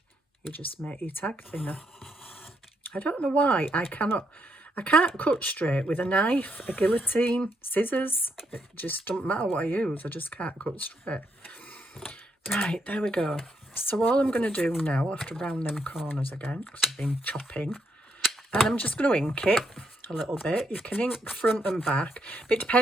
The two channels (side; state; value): both; normal; correlation 0.77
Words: You just make your tag thinner. I don't know why I can't cut straight with a knife, a guillotine, scissors. It just doesn't matter what I use, I just can't cut straight. Right, there we go. So all I'm going to do now, I have to round them corners again because I've been chopping, and I'm just going to ink it a little bit. You can ink front and back, but it